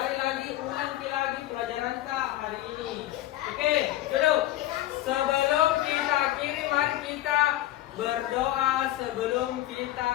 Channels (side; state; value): right; quieter; 14.8 dB